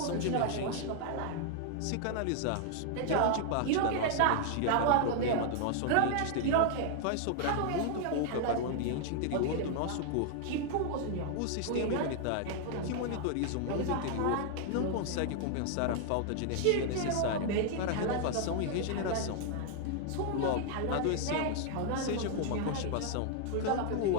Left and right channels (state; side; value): different; both; correlation 0.00